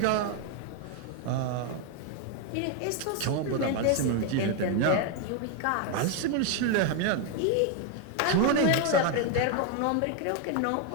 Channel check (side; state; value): both; different; correlation 0.01